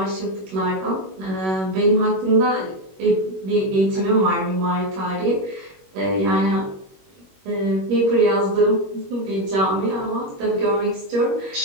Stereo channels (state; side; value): late; left; 21 ms